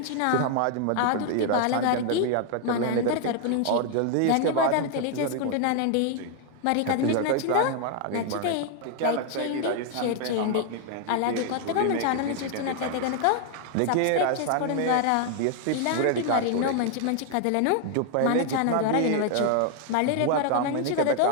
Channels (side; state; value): both; different; correlation 0.00